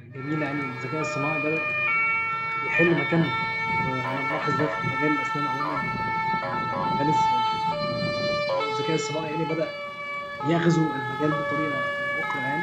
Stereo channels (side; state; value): both; identical; correlation 1.00